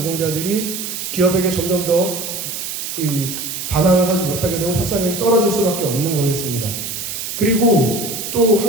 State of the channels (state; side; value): noise; right; hiss, 6 dB below the sound